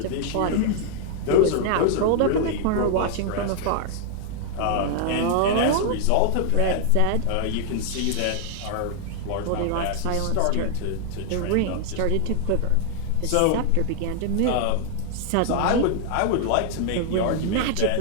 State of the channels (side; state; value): both; different; correlation 0.00